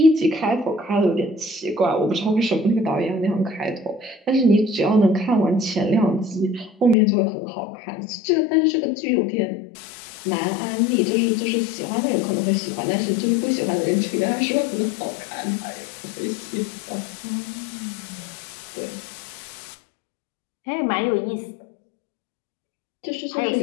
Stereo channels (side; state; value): right; drops out; at 7.0 s